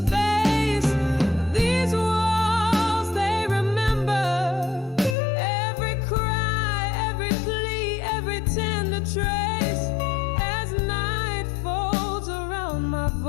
These walls, they remember every cry, every plea, every tender trace. As night folds around my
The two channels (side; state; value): right; drops out; at 5.2 s